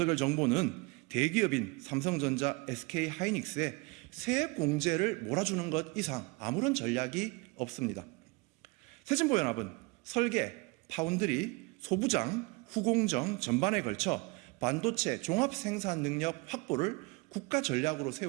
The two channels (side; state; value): left; quieter; 27.2 dB